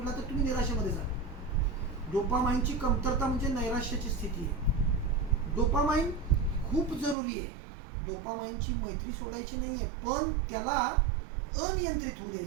तर तुम्ही निराशेमध्ये जा. डोपामाइनची कमतरता म्हणजे नैराश्याची स्थिती आहे. डोपामाइन खूप जरुरी आहे. डोपामाइनची मैत्री सोडायची नाही आहे, पण त्याला अनियंत्रित होऊ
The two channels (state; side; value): drops out; left; at 7.2 s